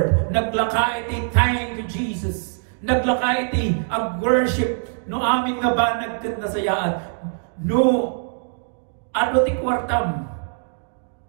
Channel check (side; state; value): left; silent; digital silence